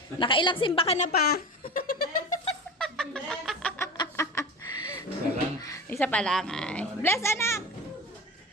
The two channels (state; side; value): normal; both; correlation 0.30